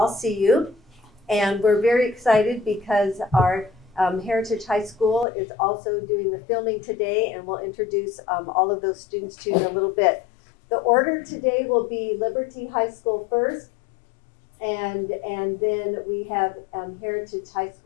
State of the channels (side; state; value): right; drops out; at 5.2 s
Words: see you. And we're very excited because our Heritage High School is also doing the filming today, and we'll introduce all of those students to you in a little bit. The order today will be Liberty High School first, and then we have Heritage High